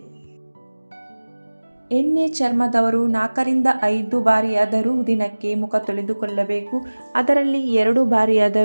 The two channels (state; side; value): inverted; both; correlation -1.00